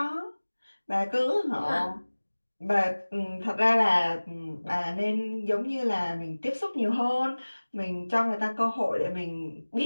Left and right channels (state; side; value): inverted; both; correlation -1.00